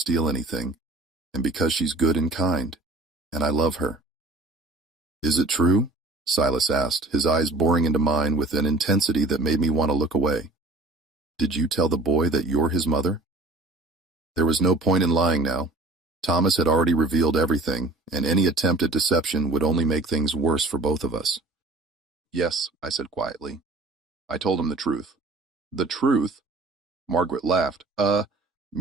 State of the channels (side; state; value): left; quieter; 3.0 dB